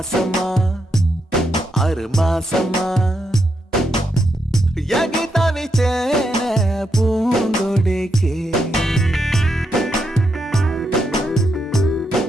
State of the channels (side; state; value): both; normal; correlation 0.81